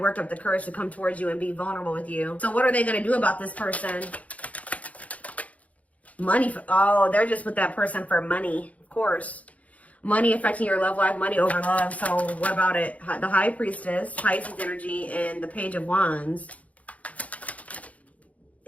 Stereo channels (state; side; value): late; right; 0.068 ms